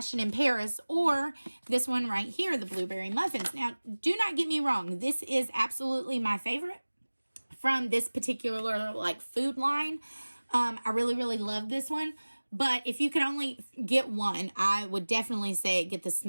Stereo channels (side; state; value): both; inverted; correlation -1.00